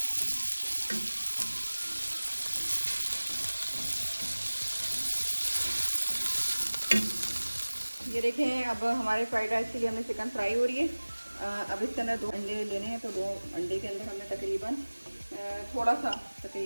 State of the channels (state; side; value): inverted; both; correlation -1.00